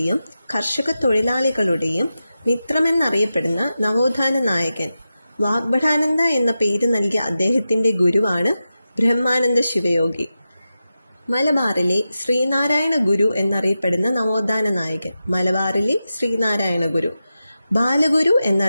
കർഷക തൊഴിലാളികളുടെയും മിത്രമെന്നറിയപ്പെടുന്ന നവോത്ഥാന നായകൻ. വാഗ്ഭടാനന്ദ എന്ന പേര് നൽകിയ അദ്ദേഹത്തിൻ്റെ ഗുരുവാണ് ബ്രഹ്മാനന്ദ ശിവയോഗി. മലബാറിലെ ശ്രീനാരായണ ഗുരു എന്നറിയപ്പെടുന്ന നവോത്ഥാന നായകൻ. മലബാറിലെ ശ്രീനാരായണ ഗുരു. ബാലഗുരു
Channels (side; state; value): both; inverted; correlation -0.92